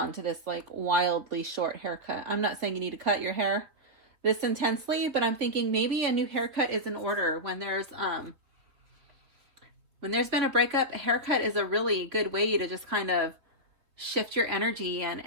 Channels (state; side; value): late; left; 3.6 ms